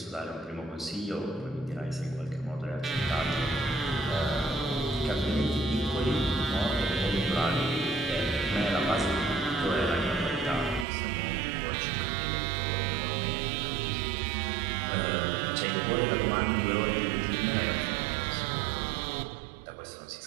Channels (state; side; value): drops out; left; at 10.9 s